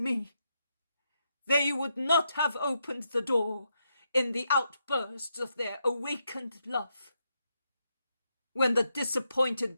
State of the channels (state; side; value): inverted; both; correlation -0.82